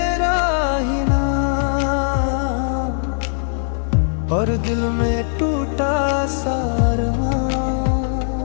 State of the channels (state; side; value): silent; right; digital silence